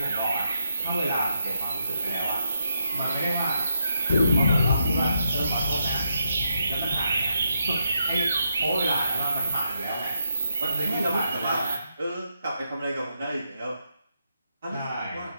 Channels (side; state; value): both; inverted; correlation -0.81